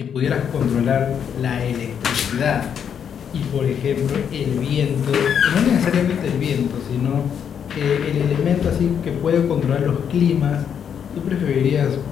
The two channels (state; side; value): quieter; right; 8.0 dB